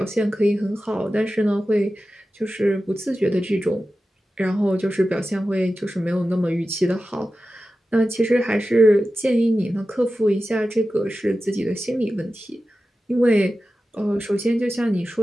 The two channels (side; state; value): both; normal; correlation 0.93